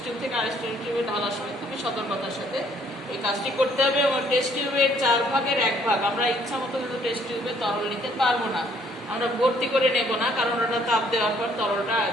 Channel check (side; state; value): both; normal; correlation 0.64